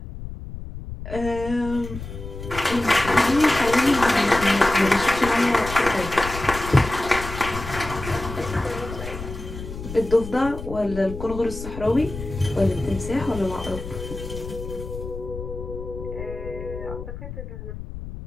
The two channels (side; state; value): left; noise; rumble, 10 dB below the sound